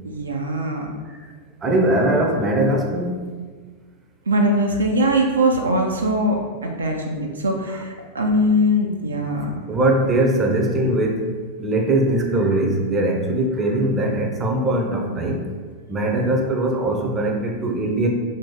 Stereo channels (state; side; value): normal; both; correlation 0.04